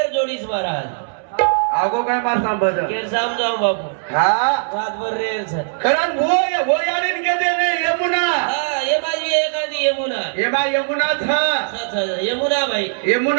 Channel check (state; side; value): silent; left; 66 dB below the other